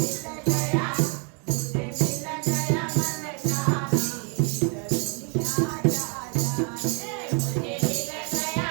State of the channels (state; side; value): quieter; left; 37.1 dB